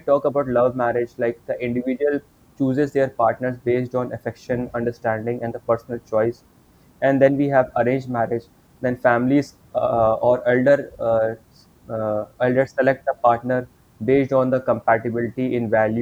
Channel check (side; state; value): both; identical; correlation 1.00